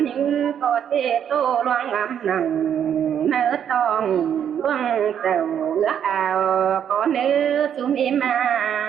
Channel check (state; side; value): quieter; left; 8.9 dB